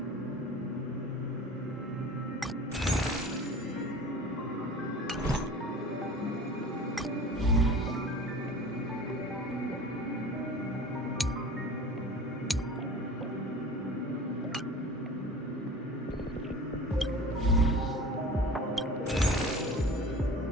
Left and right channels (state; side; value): normal; both; correlation 0.40